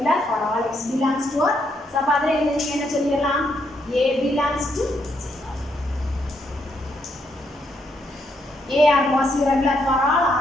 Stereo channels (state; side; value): normal; both; correlation 0.76